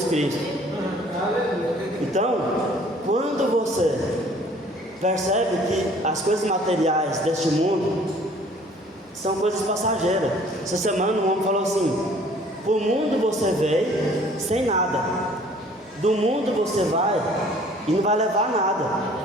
Cristo. Então, quando você percebe que as coisas materiais deste mundo são coisas passageiras. Essa semana um homem falou assim: pro mundo você veio sem nada, do mundo você vai e não vai levar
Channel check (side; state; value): both; normal; correlation 0.54